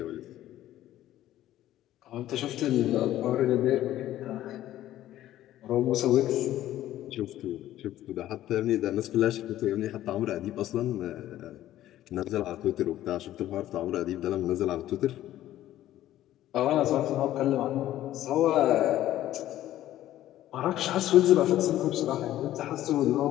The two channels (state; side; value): quieter; right; 13.5 dB